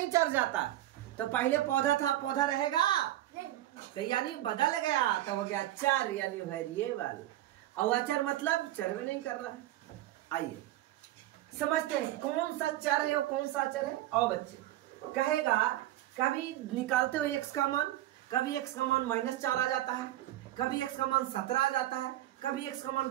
चर जाता, तो पहले पौधा था पौधा रहेगा, तो यानी बदल गया तो हो गया चर यानी वेरिएबल। और अचर मतलब चर में नहीं कर रहा है। आइए समझते हैं कौन सा चर है और कौन सा अचर है। और बच्चे कहेगा कभी निकालते हो एक्स का मान, कभी एक्स का मान -4 आ जाता है, कभी एक्स का मान 17 आ जाता है, कभी एक्स का मान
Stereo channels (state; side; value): quieter; left; 14.6 dB